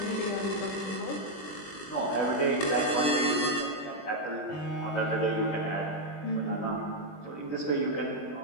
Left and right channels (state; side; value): late; right; 20 ms